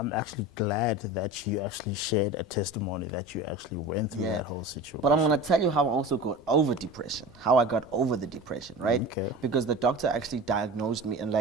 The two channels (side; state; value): both; normal; correlation 0.33